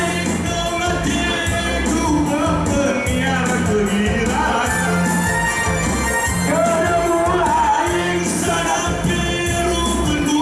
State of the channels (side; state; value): both; identical; correlation 1.00